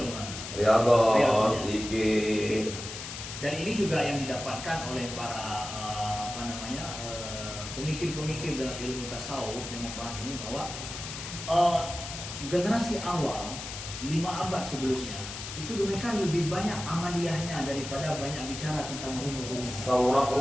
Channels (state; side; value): noise; left; hiss, 9 dB below the sound